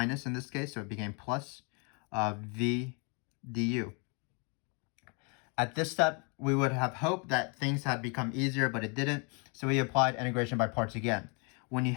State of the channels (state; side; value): quieter; right; 34.1 dB